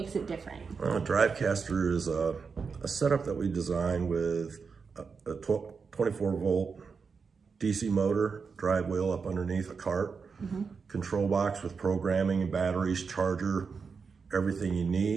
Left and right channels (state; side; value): quieter; left; 5.3 dB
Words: it different? Drivecaster is a setup that we design with a 24-volt DC motor, drive wheel up underneath a cart, control box with programming and batteries, charger, everything you